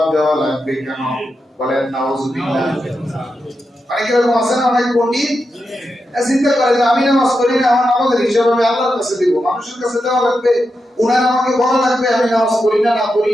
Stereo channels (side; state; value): both; normal; correlation 0.87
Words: দেওয়া লাগবে কেন? বলেন নাউজুবিল্লাহ। অনেকে এরকম আছে না, অনেক পণ্ডিত চিন্তা করে যে আমি নামাজ পড়ি না, আমার নামাজের হিসাব আমি আল্লাহর কাছে দিব, মানুষের কাছে দেওয়া লাগবে, উনার আমাকে বলা লাগবে আমি নামাজ পড়ি না